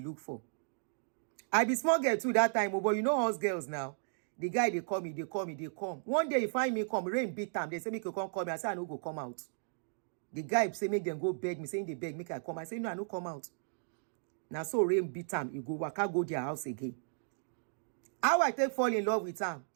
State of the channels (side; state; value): left; silent; digital silence